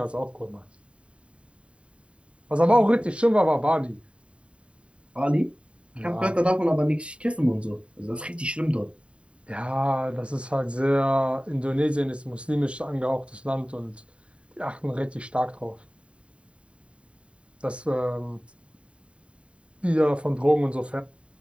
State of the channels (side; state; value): left; late; 0.059 ms